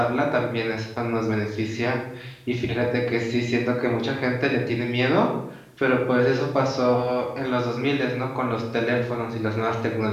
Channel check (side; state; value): both; identical; correlation 1.00